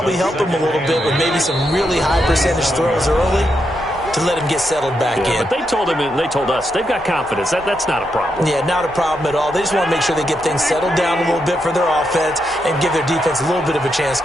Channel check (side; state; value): both; normal; correlation 0.82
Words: help him a little bit with maybe some really high percentage throws early to let him get settled back in. But they told him, and they told us, they've got confidence. That's not a problem. Yeah, not a problem at all. They just want to make sure they get things settled down a little bit for their offense and give their defense a little bit of a chance